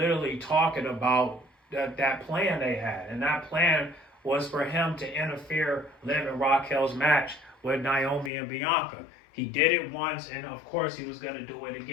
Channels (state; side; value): drops out; right; at 8.3 s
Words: talking about that plan they had, and that plan was for him to interfere Liv and Raquel's match with Naomi and Bianca. He did it once, and of course he was going to do it